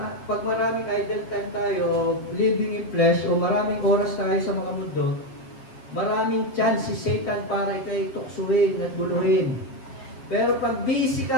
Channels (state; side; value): late; right; 7.6 ms